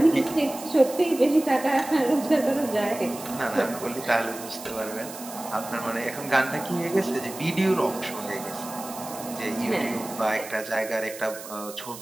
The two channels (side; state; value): right; noise; hiss, 13 dB below the sound